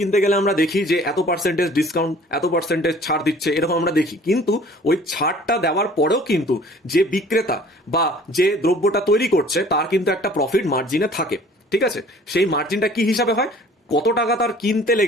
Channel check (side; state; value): both; normal; correlation 0.51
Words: গেলে আমরা দেখি যে এত পার্সেন্টেজ ডিসকাউন্ট, এত পার্সেন্টেজ ছাড় দিচ্ছে, এরকম আমরা দেখি। কিন্তু ওই ছাড়টা দেওয়ার পরেও কিন্তু যে বিক্রেতা বা যে দ্রব্যটা তৈরি করছে তার কিন্তু একটা প্রফিট মার্জিনে থাকে, ঠিক আছে। সেই মার্জিনটা কি হিসাবে হয়? কত টাকা তার কিনতে